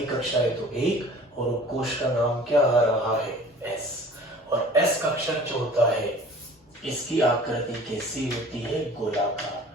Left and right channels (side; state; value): both; normal; correlation 0.46